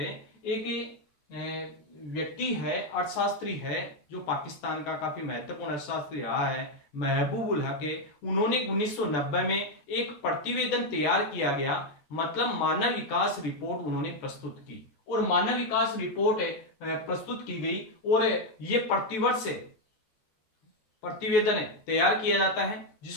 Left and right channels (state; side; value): late; right; 14 ms